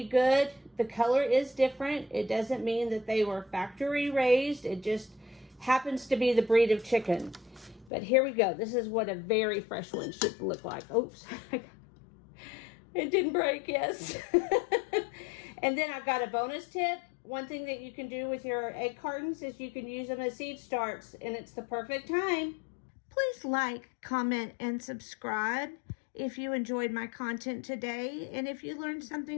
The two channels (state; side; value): drops out; right; at 7.9 s